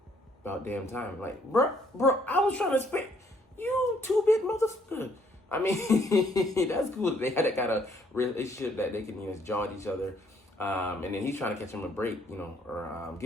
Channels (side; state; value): both; normal; correlation 0.66